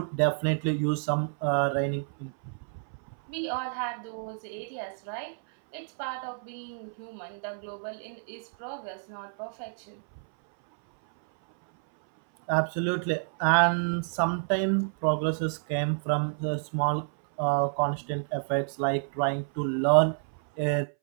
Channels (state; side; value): silent; left; 58 dB below the other